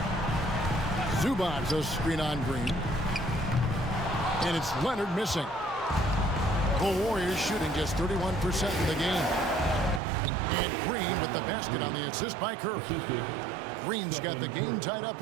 Zubac a screen on Green. And it's Leonard missing. The Warriors shooting just 31% in the game. And Green with the basket on the assist by Curry. Green's got the game tied up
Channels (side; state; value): left; drops out; at 10.0 s